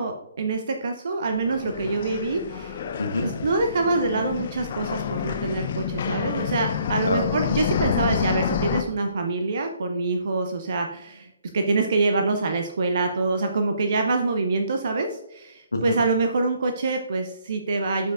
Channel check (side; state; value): both; inverted; correlation -0.66